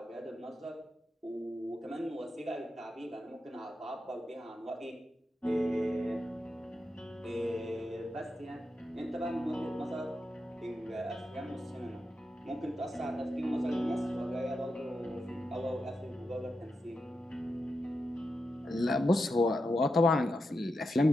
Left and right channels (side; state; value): both; normal; correlation 0.87